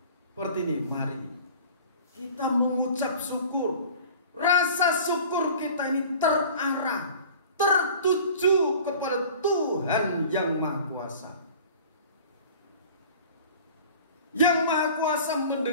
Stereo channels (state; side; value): inverted; both; correlation -0.44